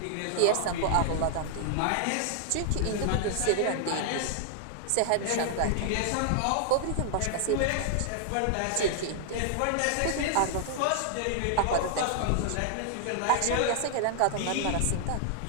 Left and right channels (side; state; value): both; different; correlation -0.01